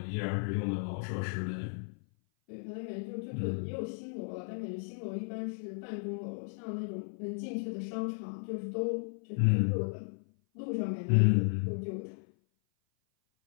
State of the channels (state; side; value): silent; right; 55 dB below the other